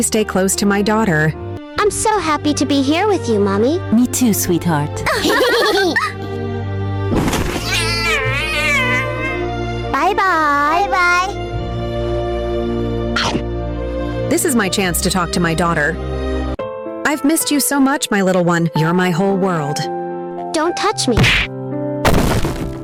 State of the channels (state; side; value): identical; both; correlation 1.00